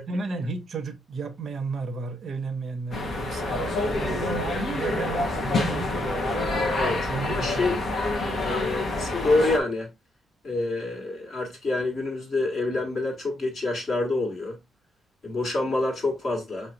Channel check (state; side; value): normal; both; correlation 0.78